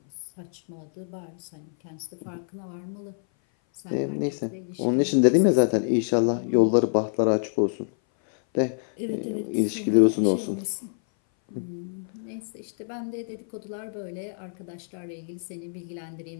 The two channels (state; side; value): silent; right; 58 dB below the other